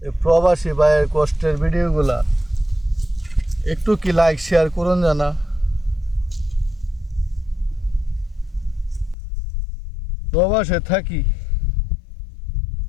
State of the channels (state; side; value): drops out; right; at 9.2 s